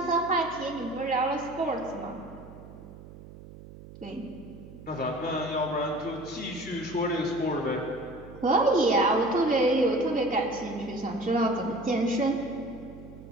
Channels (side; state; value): right; noise; hum, 17 dB below the sound